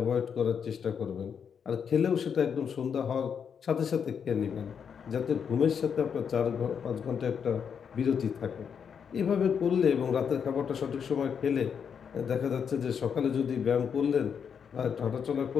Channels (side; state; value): right; quieter; 7.1 dB